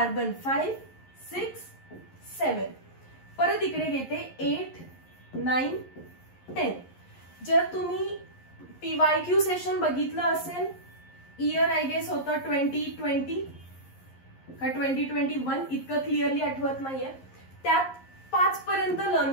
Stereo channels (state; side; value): late; right; 11 ms